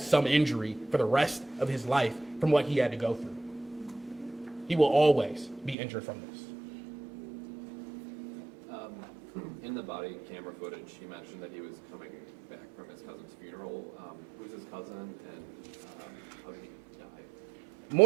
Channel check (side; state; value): left; drops out; at 5.8 s